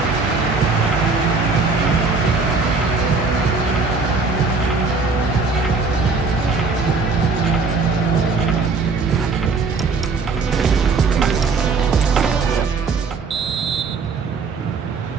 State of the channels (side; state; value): left; quieter; 4.5 dB